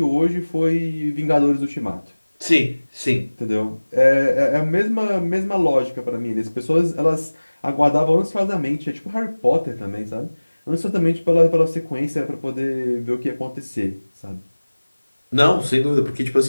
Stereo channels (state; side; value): inverted; both; correlation -1.00